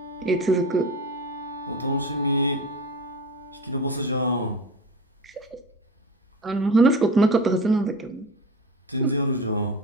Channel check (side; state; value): both; normal; correlation 0.30